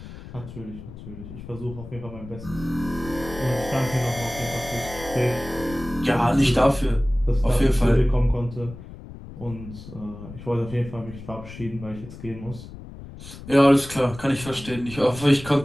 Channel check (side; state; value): left; noise; rumble, 14 dB below the sound